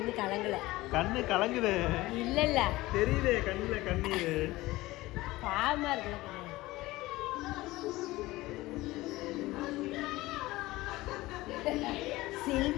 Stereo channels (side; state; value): right; quieter; 18.9 dB